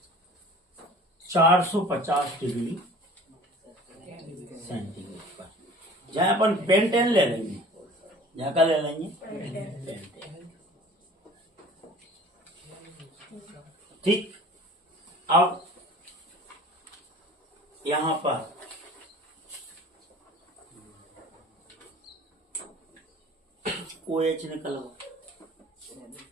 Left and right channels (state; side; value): normal; both; correlation 0.46